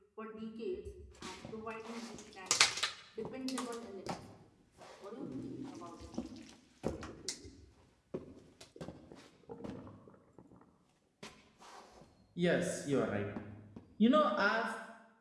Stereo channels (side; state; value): both; identical; correlation 1.00